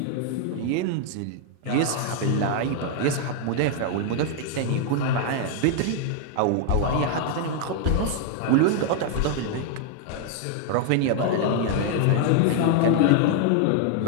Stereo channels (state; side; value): different; both; correlation 0.00